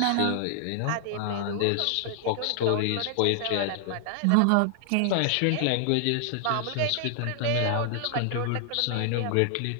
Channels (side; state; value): both; different; correlation 0.00